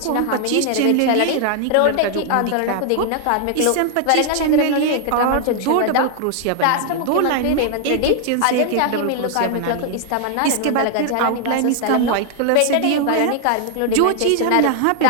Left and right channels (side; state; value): both; different; correlation 0.00